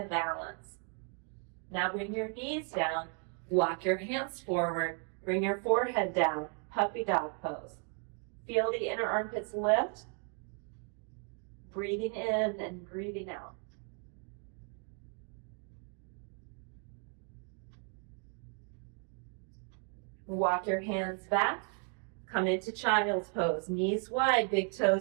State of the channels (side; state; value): left; quieter; 39.8 dB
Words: balance. Now bring your knees down. Walk your hands forward. Bring your forehead down. Puppy dog pose. Feel the inner armpits lift. Breathing in and breathing out. Walk your hands back. Come into child's pose. Knees wide, big